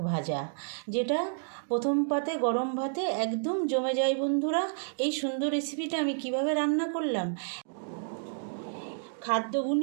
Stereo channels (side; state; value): left; silent; digital silence